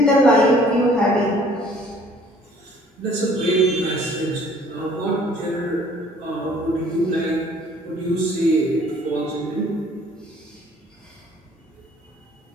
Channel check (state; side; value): normal; both; correlation 0.56